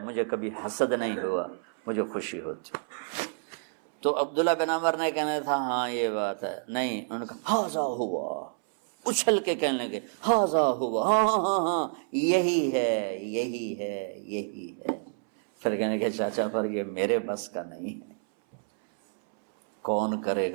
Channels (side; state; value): left; silent; 59 dB below the other